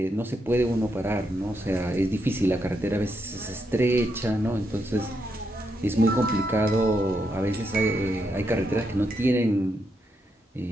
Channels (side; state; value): both; normal; correlation 0.81